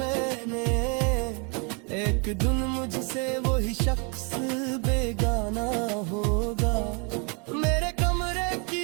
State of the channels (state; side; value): quieter; left; 35.2 dB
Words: एक दिन मुझसे वही शख्स बेगाना होगा। मेरे कमरे